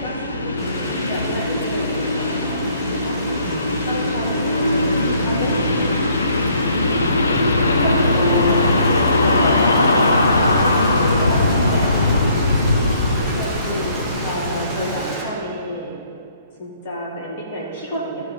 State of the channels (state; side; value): inverted; both; correlation -0.63